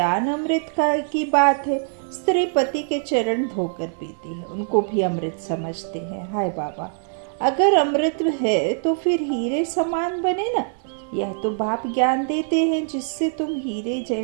अमृत की बात है। स्त्री पति के चरण धोकर पीती है, उनको भी अमृत समझते हैं। हाय बाबा, अगर अमृत है तो फिर हीरे समान बने ना। यह तो बाप ज्ञान देते हैं जिससे तुम हीरे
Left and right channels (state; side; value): silent; left; digital silence